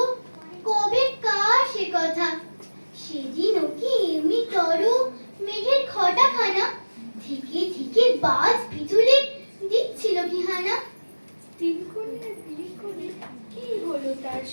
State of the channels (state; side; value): inverted; both; correlation -1.00